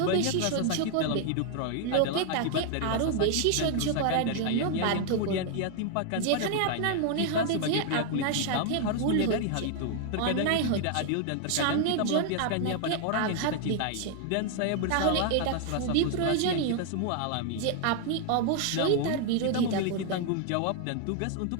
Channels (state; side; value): different; both; correlation 0.00